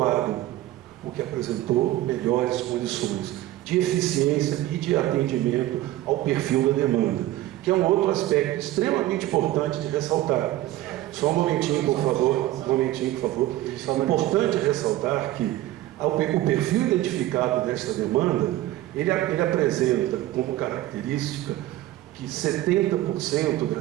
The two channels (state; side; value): quieter; left; 15.4 dB